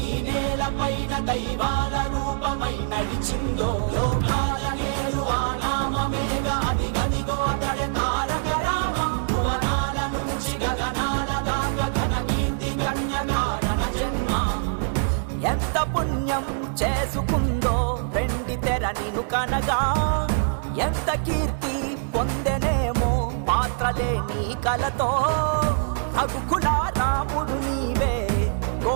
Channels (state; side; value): silent; left; digital silence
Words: ఈ నేల పైన దైవాల రూపమై నడిచిందో, లోకాల నేరు ఆ నామమేగా అది గదిగో అతడే తారక రామం. భువనాల నుంచి గగనాల దాకా ఘన కీర్తి గణ్య కారణ జన్మ. ఎంత పుణ్యం చేసుకుందో వెండి తెర నిను కనగా, ఎంత కీర్తి పొందెనేమో పాత్రలే నీ కలతో. రఘుకుల రాముడు నీవే,